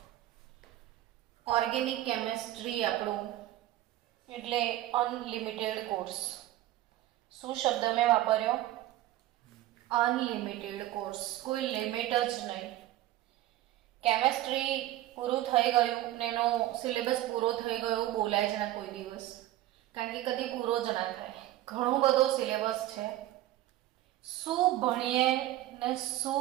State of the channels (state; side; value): quieter; left; 14.9 dB